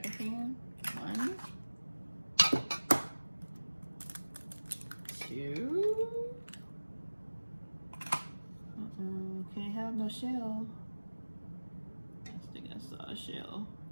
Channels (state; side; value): inverted; both; correlation -1.00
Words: 1, 2. Can't have no shell. I think I saw a shell.